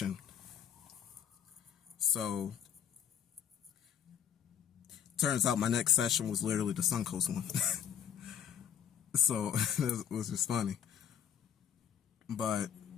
So, turns out my next session was literally the Suncoast one. So, it was just funny. But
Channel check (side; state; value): right; quieter; 8.9 dB